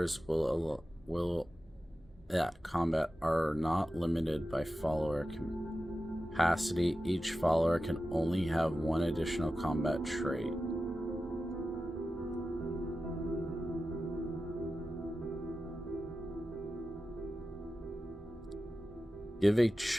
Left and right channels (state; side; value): normal; both; correlation 0.93